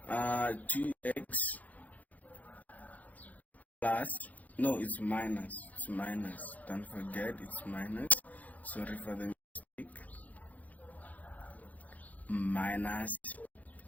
2x plus, no, it's minus, don't forget it's minus, sorry for the mistake, minus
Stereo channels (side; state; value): right; late; 0.077 ms